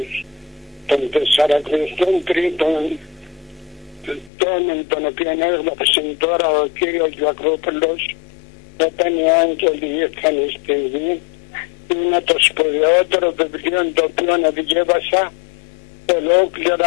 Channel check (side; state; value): right; drops out; at 4.3 s